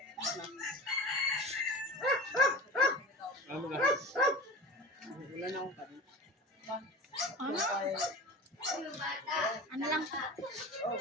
Ano ba? Wala na akong kanin. Ano? Ano lang?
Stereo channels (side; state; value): both; normal; correlation 0.33